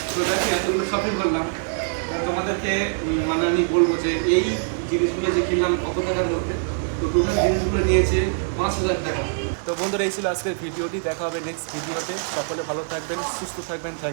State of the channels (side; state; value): left; silent; 60 dB below the other